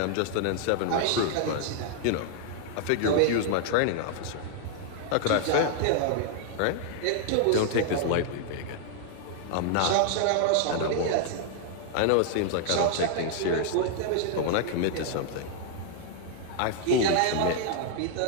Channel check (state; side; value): different; both; correlation 0.00